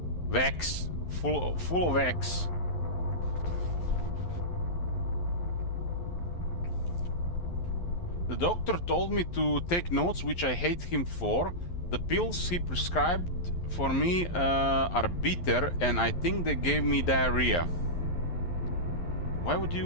Wax. Full of wax. The doctor told me to take notes, which I hate him for. The pills he prescribed for me are bitter, and I think they gave me diarrhea. Why would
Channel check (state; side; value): late; right; 11 ms